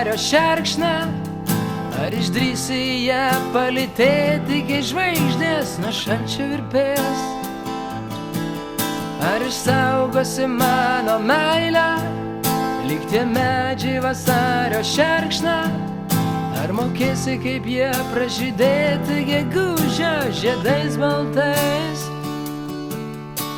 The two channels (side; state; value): both; identical; correlation 1.00